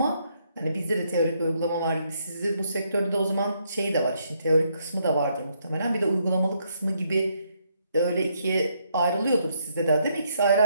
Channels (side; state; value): both; inverted; correlation -0.74